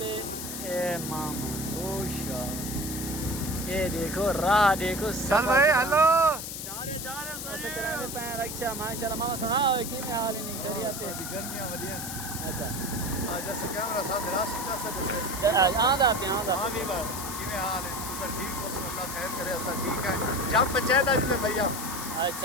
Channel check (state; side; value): noise; left; hiss, 7 dB below the sound